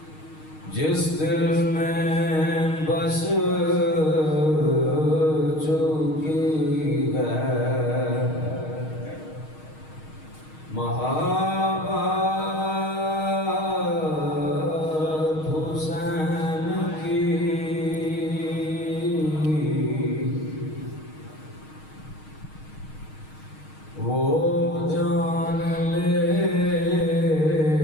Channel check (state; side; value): late; right; 6.4 ms